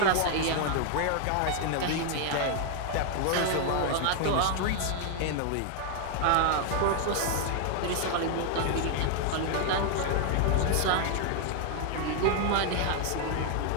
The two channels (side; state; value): both; different; correlation 0.00